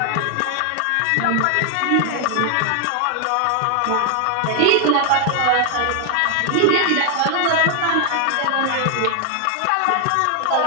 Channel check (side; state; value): both; different; correlation 0.00